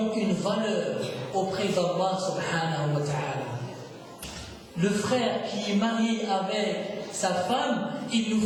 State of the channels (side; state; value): both; identical; correlation 1.00